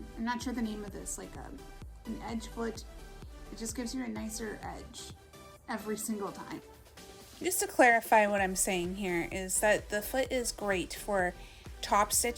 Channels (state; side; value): identical; both; correlation 1.00